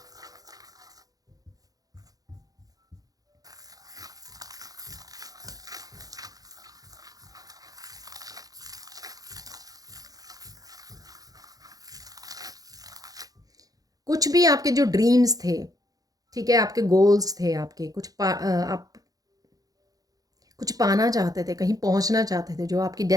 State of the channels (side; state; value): left; late; 0.18 ms